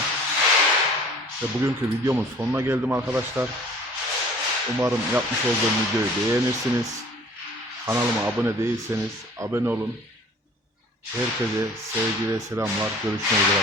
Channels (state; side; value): normal; both; correlation 0.49